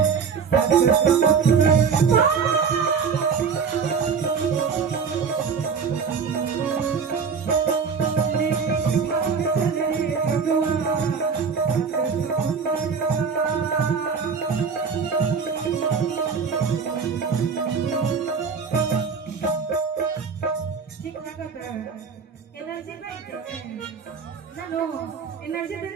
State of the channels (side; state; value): left; quieter; 5.9 dB